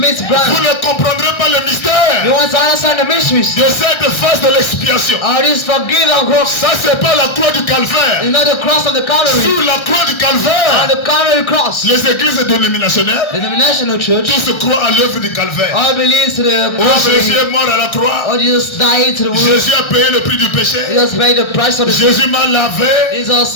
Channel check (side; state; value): right; late; 1.3 ms